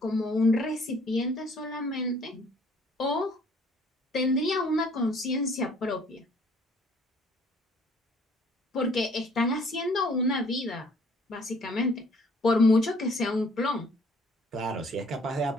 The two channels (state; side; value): normal; both; correlation 0.59